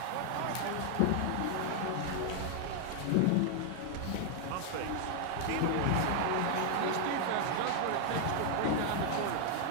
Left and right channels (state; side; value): different; both; correlation 0.00